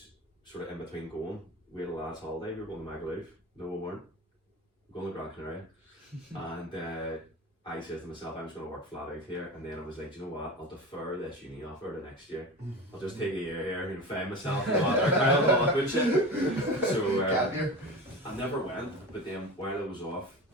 sort of in between going, we had a last holiday. We were going to Magaluf. No, we weren't. We were going to Gran Canaria. And I said to myself, I'm just going to work flat out here. And then I was like, you know what? I'll defer this uni offer to next year. I'll just take a year here and find myself and all that good shit. So I never went. But then while I was off,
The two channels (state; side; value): normal; both; correlation 0.31